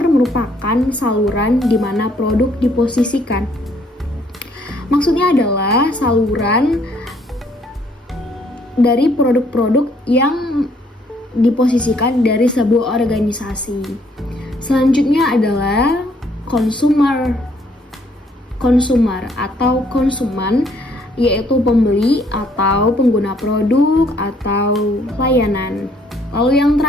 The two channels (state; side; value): normal; both; correlation 0.66